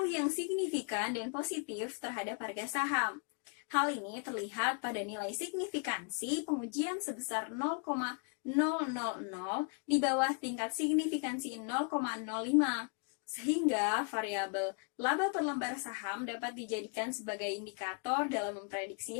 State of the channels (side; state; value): right; quieter; 39.6 dB